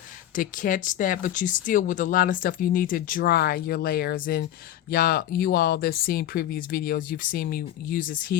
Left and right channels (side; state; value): right; quieter; 12.0 dB